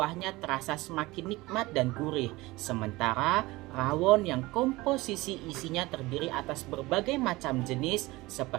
terasa semakin nikmat dan gurih. Sementara rawon yang komposisi isinya terdiri atas berbagai macam jenis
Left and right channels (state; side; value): quieter; left; 20.7 dB